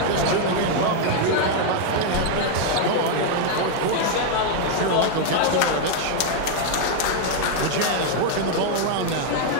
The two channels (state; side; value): different; both; correlation 0.00